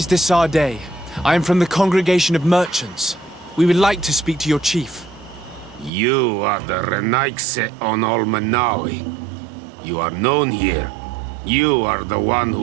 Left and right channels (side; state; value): left; drops out; at 5.9 s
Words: Desardet. I am from the Congregation of Merchants. We would like to speak to your chief. You are the Renaigse on Olmenawi. You are known here. You are the one